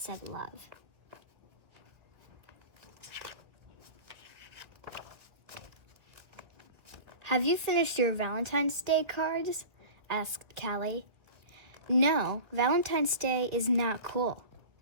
love. "Have you finished your Valentine's Day cards?" asked Callie. "No, Valentine's Day is not cool,"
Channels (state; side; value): late; left; 1.8 ms